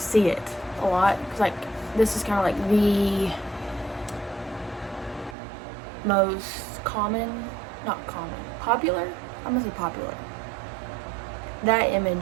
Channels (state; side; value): drops out; left; at 5.4 s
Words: it a lot. Cause like this is kind of like the most popular. I'm gonna say popular. That